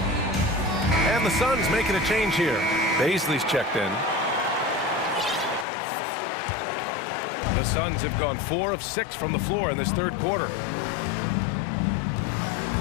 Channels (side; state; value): right; drops out; at 5.7 s